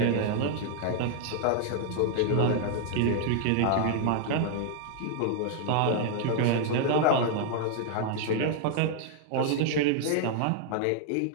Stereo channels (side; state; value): both; different; correlation 0.00